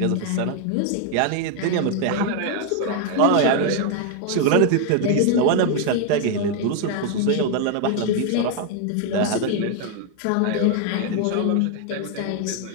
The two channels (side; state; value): both; different; correlation 0.01